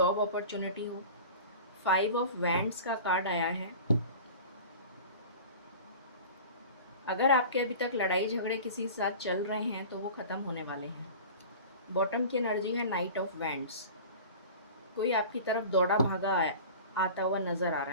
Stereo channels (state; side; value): inverted; both; correlation -0.38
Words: अपॉर्चुनिटी हो। फाइव ऑफ वैंड्स का कार्ड आया है। अगर आपके अभी तक लड़ाई झगड़े किसी के साथ चल रहे हैं तो वो ख़त्म होने वाले हैं। बॉटम की एनर्जी है नाइट ऑफ वैंड्स। कोई आपकी तरफ दौड़ा भागा आता हुआ नज़र आ